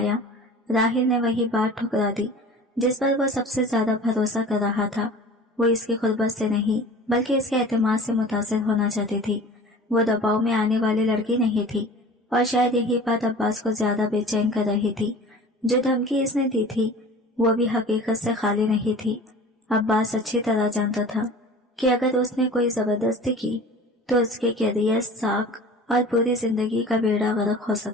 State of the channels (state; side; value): normal; both; correlation 0.41